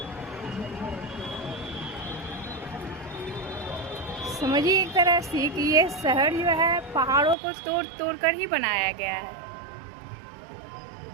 समझिए एक तरह से कि ये शहर जो है पहाड़ों को तोड़ तोड़ कर ही बनाया गया है।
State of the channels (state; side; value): drops out; left; at 7.4 s